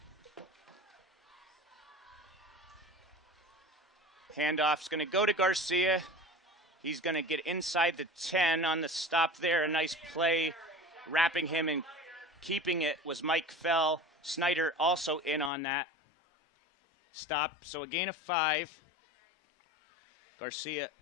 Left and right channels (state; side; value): drops out; right; at 15.5 s